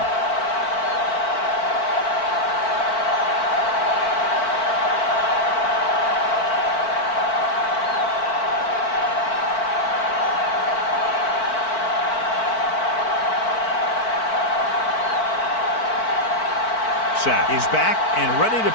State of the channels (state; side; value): late; right; 4.5 ms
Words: Sack is back and ready to